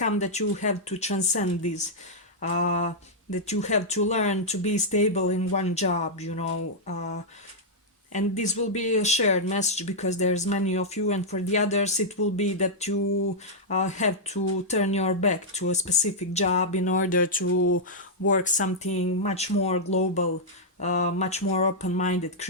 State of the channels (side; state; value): both; normal; correlation -0.07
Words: that you have to transcend this, that you have to learn to be stable in one job, you know. And this will be a shared message because there's many of you, and for the others it will be that you have to turn your back to a specific job in order to work something much more global, much more open-minded,